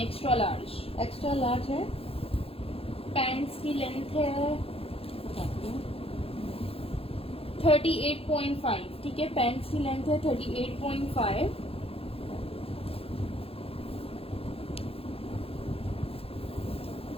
large. Extra large है। पैंट्स की लेंथ है 38.5, ठीक है। पैंट्स की लेंथ है 38.5।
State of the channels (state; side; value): late; right; 0.28 ms